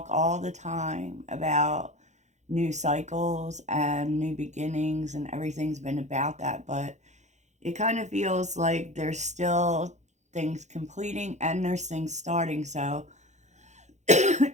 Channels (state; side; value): late; left; 0.34 ms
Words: all the time about new cycles and new beginnings, and everything's been about that. But it kind of feels like there's still things completing and there's things starting. So it